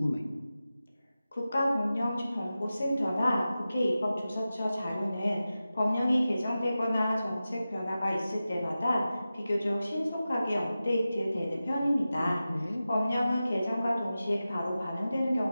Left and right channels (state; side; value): inverted; both; correlation -0.94